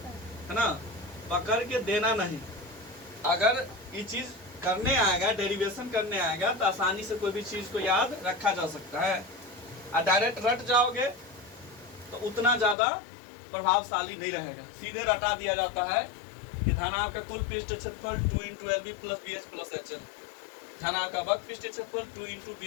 है ना, पकड़ के देना नहीं। अगर ये चीज करने आएगा, डेरिवेशन करने आएगा तो आसानी से कोई भी चीज को याद रखा जा सकता है। और डायरेक्ट रट जाओगे तो उतना ज्यादा प्रभावशाली नहीं रहेगा। सीधे रटा दिया जाता है कि धनाभ का कुल पृष्ठीय क्षेत्रफल 2 into LB plus BH plus HL। धनाभ का वक्र पृष्ठीय क्षेत्रफल 2 इंटू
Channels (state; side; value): drops out; right; at 12.8 s